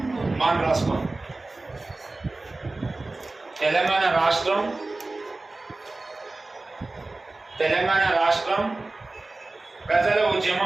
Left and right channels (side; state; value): left; quieter; 3.1 dB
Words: మనం రాసుకో. తెలంగాణ రాష్ట్రం ప్రజల